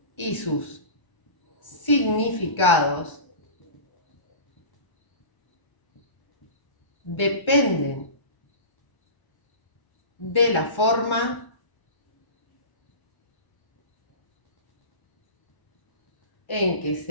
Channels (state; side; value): late; right; 1.3 ms